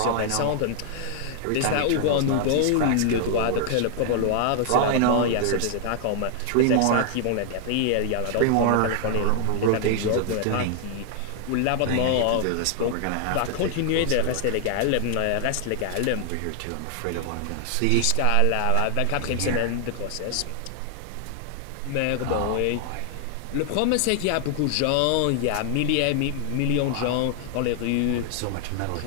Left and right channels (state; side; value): different; both; correlation 0.00